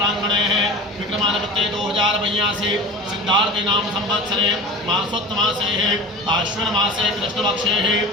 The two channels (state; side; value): normal; both; correlation 0.35